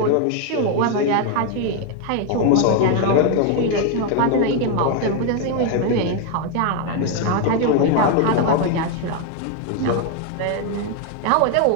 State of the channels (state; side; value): different; both; correlation 0.01